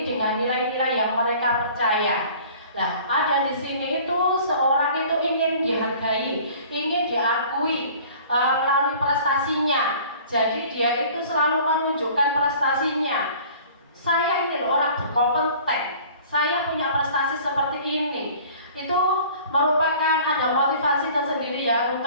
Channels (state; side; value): inverted; both; correlation -0.48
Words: dengan nilai-nilai yang mereka percaya. Nah, ada di sini itu seorang itu ingin dihargai, ingin diakui melalui prestasinya. Jadi dia itu selalu menunjukkan prestasinya. Saya ingin orang berkompeten, saya punya prestasi seperti ini. Itu merupakan ada motivasi tersendiri ya